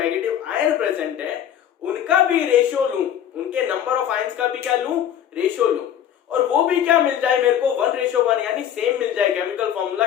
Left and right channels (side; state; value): right; quieter; 10.1 dB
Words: आयन प्रेजेंट है, उनका भी रेशियो लूं, उनके नंबर ऑफ आयंस का भी क्या लूं? रेशियो लूं, और वो भी क्या मिल जाए मेरे को? 1:1, यानी सेम मिल जाए केमिकल फॉर्मूला